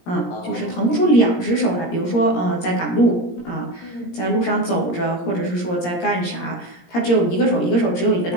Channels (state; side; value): late; right; 17 ms